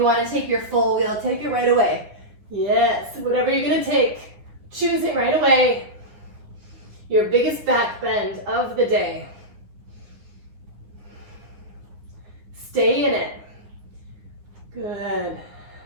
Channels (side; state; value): left; late; 9.7 ms